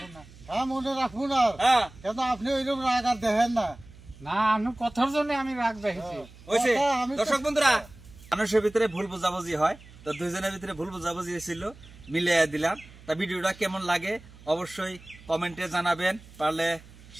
না। হ্যাঁ মনে রাখবো না, কেন আপনি ওইরকম রাগ আর দেখেন না। না আমি কথার জন্য আমি রাগ দেখেছি। দর্শক বন্ধুরা মানুষের ভিতরে ভুল বুঝাবুঝি হয়, তো দুইজনের ভিতরে ভুল বুঝাবুঝি হয়েছিল, মিলিয়ে দিলাম। তা ভিডিওটা কেমন লাগে অবশ্যই কমেন্টে জানাবেন, পারলে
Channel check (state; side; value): noise; right; hum, 21 dB below the sound